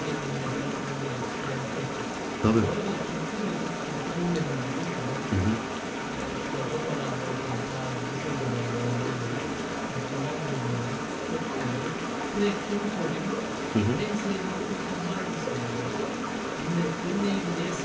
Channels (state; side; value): identical; both; correlation 1.00